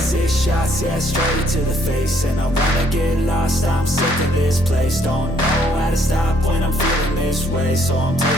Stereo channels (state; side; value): normal; both; correlation 0.66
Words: 6 shots, yeah, straight to the face. And I wanna get lost, I'm sick of this place. Don't know how to stop when I'm feeling this way. So I'm